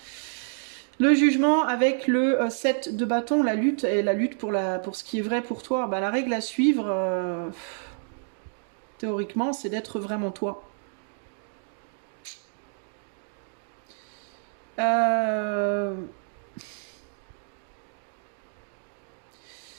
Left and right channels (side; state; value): left; silent; digital silence